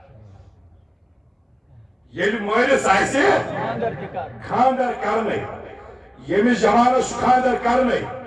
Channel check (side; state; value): both; identical; correlation 1.00